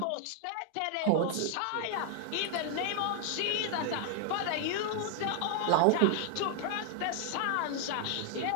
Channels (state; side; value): different; both; correlation 0.00